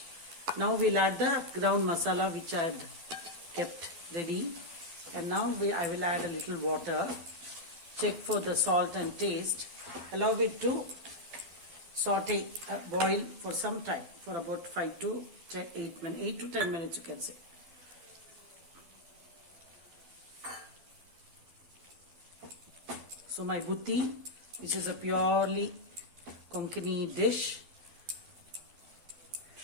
Now we'll add the ground masala which I had kept ready, and now I will add a little water, check for the salt and taste, allow it to saute, boil for some time, for about 8 to 10 minutes you can say. So my butti, this is a purely Konkani dish,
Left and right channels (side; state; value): left; late; 12 ms